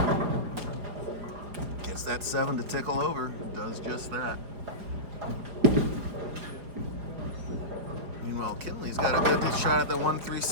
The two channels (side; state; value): left; late; 5.0 ms